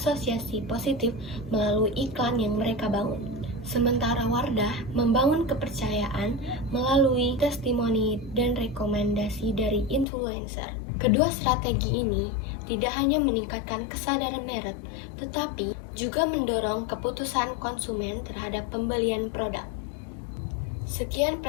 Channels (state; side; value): drops out; right; at 10.1 s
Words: positif melalui iklan yang mereka bangun. Sementara Wardah membangun kepercayaan melalui testimoni dan rekomendasi dari influencer. Kedua strategi ini tidak hanya meningkatkan kesadaran merek, tetapi juga mendorong keputusan konsumen terhadap pembelian produk. Sekian